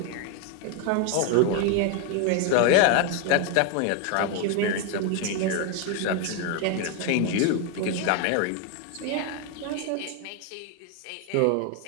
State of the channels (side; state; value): both; different; correlation 0.01